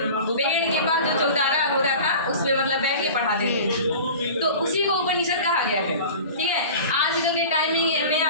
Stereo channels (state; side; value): inverted; both; correlation -0.38